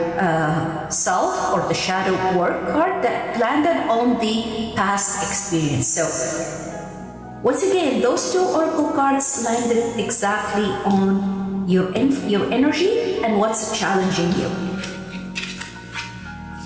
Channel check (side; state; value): both; identical; correlation 1.00